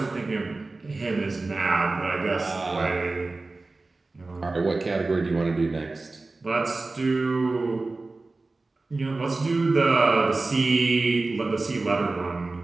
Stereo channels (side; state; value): left; quieter; 3.4 dB